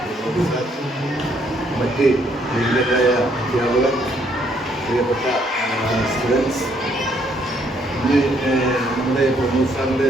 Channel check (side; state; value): both; normal; correlation 0.69